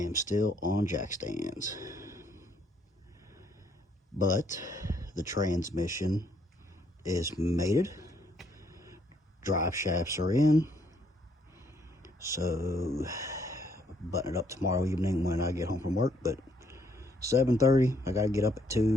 still on jack stands. But the transmission is mated. Drive shafts are in. So button it up tomorrow evening when I get home from work. But 7:30, I gotta get up at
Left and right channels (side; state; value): both; normal; correlation 0.69